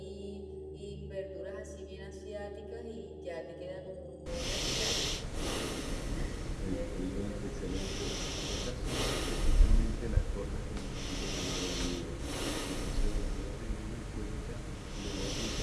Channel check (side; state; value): both; identical; correlation 1.00